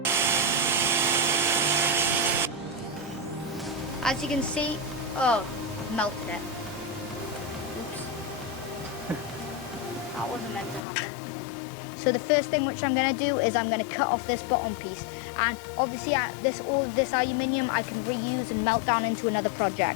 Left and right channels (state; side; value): drops out; right; at 10.8 s